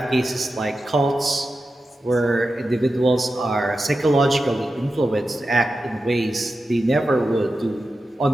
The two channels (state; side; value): normal; both; correlation 0.91